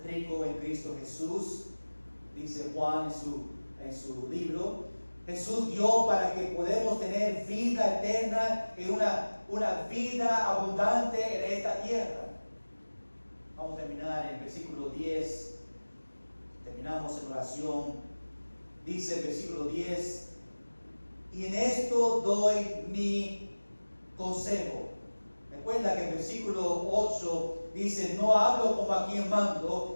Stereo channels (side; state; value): both; inverted; correlation -1.00